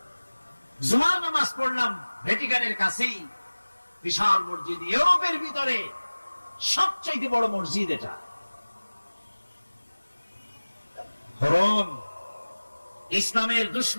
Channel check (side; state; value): both; inverted; correlation -1.00